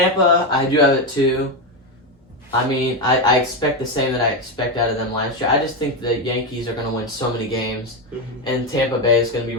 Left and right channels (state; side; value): normal; both; correlation 0.10